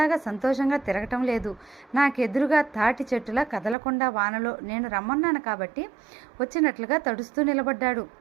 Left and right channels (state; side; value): drops out; left; at 3.8 s